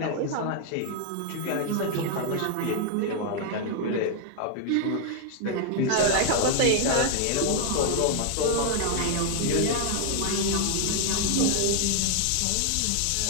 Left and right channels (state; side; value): different; both; correlation 0.00